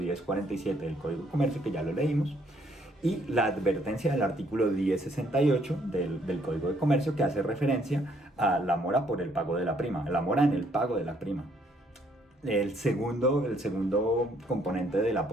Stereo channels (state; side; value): normal; both; correlation 0.67